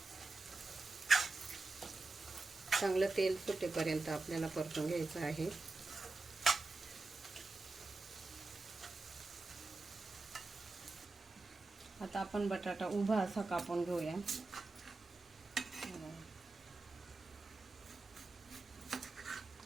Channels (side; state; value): left; quieter; 3.6 dB